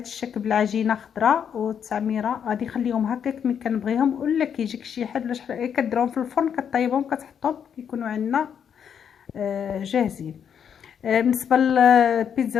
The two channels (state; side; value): quieter; right; 8.0 dB